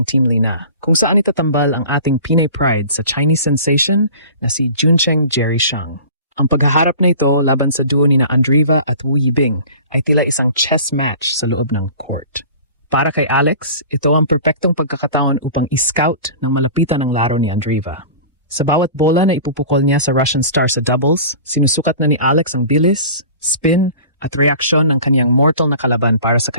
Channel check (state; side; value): inverted; both; correlation -0.41